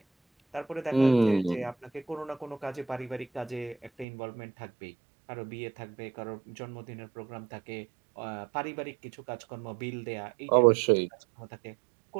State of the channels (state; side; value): drops out; left; at 4.0 s